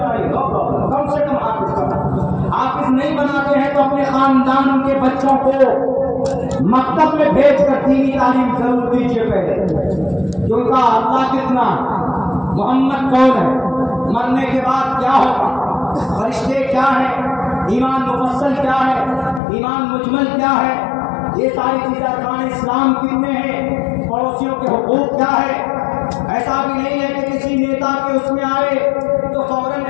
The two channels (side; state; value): right; drops out; at 19.4 s